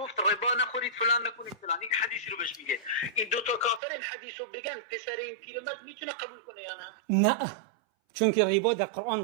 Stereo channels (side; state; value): left; drops out; at 3.8 s